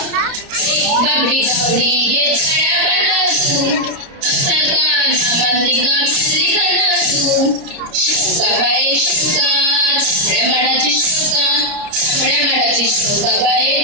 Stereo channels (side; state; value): left; late; 29 ms